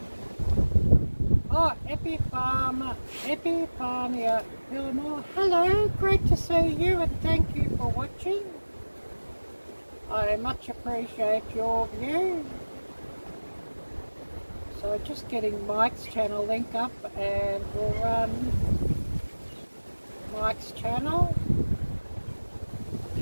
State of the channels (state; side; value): inverted; both; correlation -1.00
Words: Oh, Epiphania Villamore, hello, great to see you and thank you for watching. I much appreciate your view. So just getting Mike's channel link up and we'll run Mike's channel